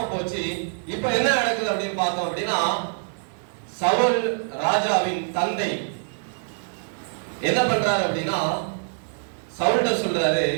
போச்சு. இப்ப என்ன நடக்குது அப்படின்னு பார்த்தோம் அப்படின்னா சவுல் ராஜாவின் தந்தை என்ன பண்றாரு அப்படின்னா சவுல்ட சொல்றாரு,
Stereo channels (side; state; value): left; silent; 62 dB below the other